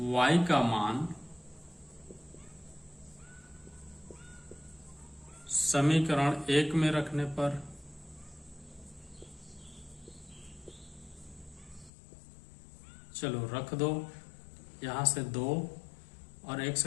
y का मान समीकरण 1 में रखने पर चलो रख दो, यहां से 2 और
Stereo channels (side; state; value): right; drops out; at 11.9 s